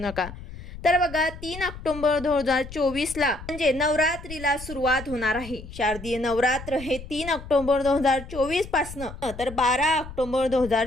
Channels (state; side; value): noise; left; rumble, 13 dB below the sound